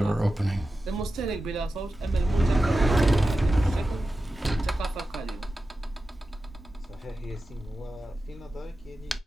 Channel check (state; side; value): normal; both; correlation 0.93